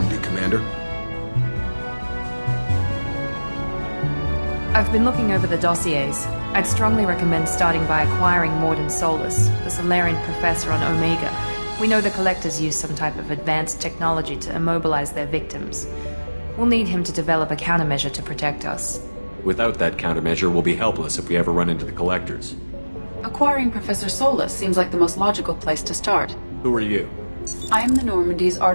Commander. I've been looking over the dossiers. I'd strongly recommend starting by acquiring Mordin Solus, the Solarian professor on Omega. We know the Collectors use some type of advanced technology to immobilize their victims. We'll need him to develop a countermeasure to protect us. Without that countermeasure, we'll be helpless if we ever run into the Collectors. Acquiring Professor Solus seems like the most logical place to start. Who are you? I am the Normandy's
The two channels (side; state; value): both; inverted; correlation -1.00